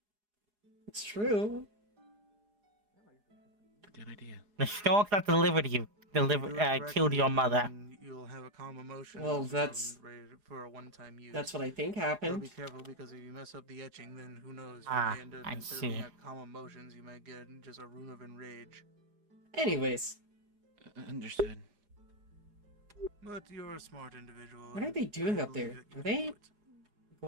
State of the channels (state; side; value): late; left; 4.8 ms